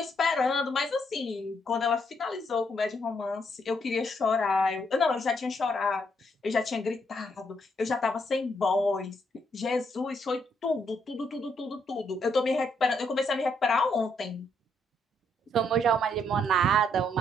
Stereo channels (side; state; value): both; normal; correlation 0.74